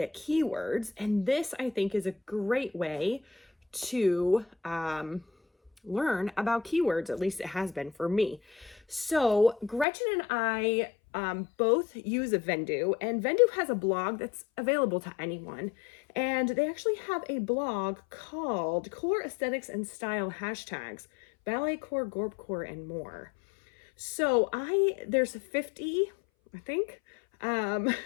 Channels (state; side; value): drops out; right; at 9.9 s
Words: keywords, and this I think is a great way to learn about keywords. At least it has been for me. So Gretchen and I both use a Vendoo, and Vendoo has a blog that's available to anyone. And they actually have a blog called Core Aesthetics and Style Hashtags, Ballet Core, Gorp Core, and more. So there's 50, I think,